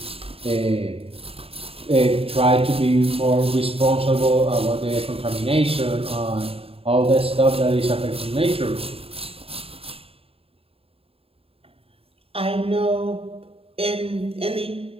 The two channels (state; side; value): late; left; 0.28 ms